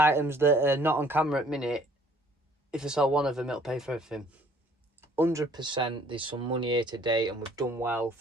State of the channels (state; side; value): normal; both; correlation 0.59